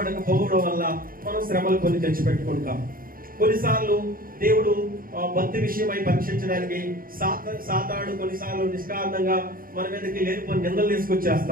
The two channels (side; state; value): left; late; 0.41 ms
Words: వల్ల మనం శ్రమలు కొన్ని తెచ్చి పెట్టుకుంటాం. కొన్నిసార్లు దేవుడు భక్తి విషయమై పరీక్షించడానికి సాతానుడు కొన్నిసార్లు నిష్కారణంగా మన మీదకి లేనిపోని నిందలు